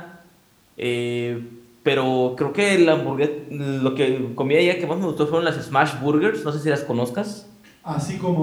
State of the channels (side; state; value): both; identical; correlation 1.00